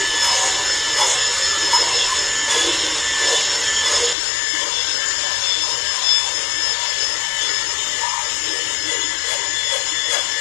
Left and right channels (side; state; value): right; drops out; at 4.2 s